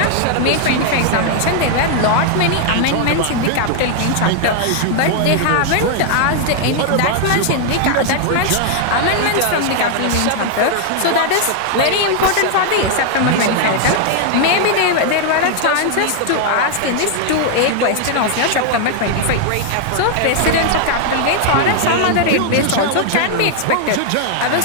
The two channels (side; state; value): both; different; correlation 0.00